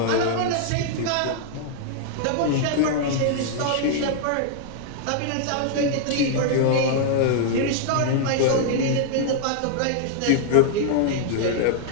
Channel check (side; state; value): both; different; correlation -0.01